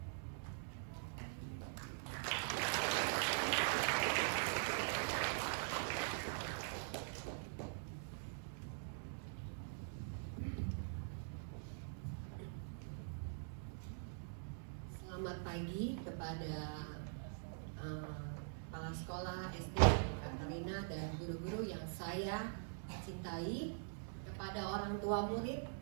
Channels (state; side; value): silent; left; digital silence